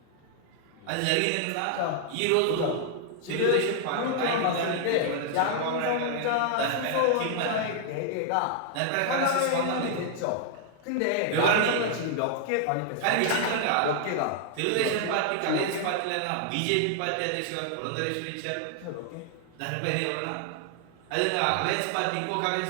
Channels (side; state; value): both; different; correlation 0.00